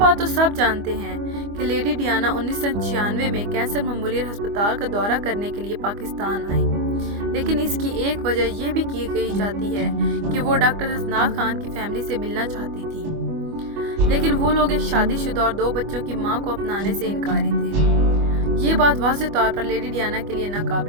تو سب جانتے ہیں کہ لیڈی ڈیانا 1996 میں کینسر میموریل ہسپتال کا دورہ کرنے کے لیے پاکستان آئی، لیکن اس کی ایک وجہ یہ بھی کہی جاتی ہے کہ وہ ڈاکٹر حسنات خان کی فیملی سے ملنا چاہتی تھی، لیکن وہ لوگ ایک شادی شدہ اور 2 بچوں کی ماں کو اپنانے سے انکاری تھے۔ یہ بات واضح طور پر لیڈی ڈیانا کے لیے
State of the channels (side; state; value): left; late; 25 ms